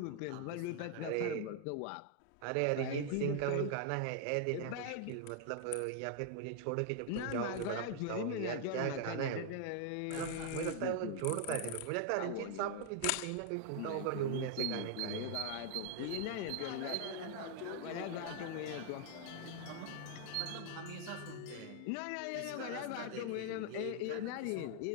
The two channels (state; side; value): different; both; correlation 0.00